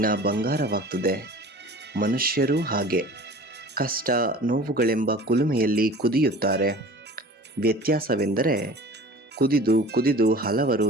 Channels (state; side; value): normal; both; correlation 0.42